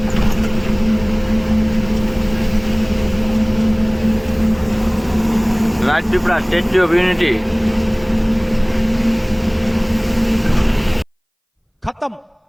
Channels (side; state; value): both; identical; correlation 1.00